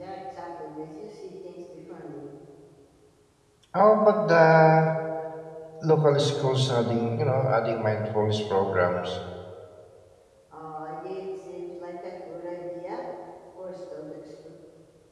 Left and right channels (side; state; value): both; identical; correlation 1.00